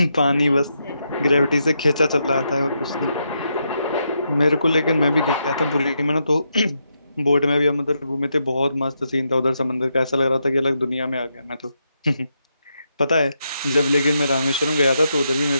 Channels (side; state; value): both; inverted; correlation -0.82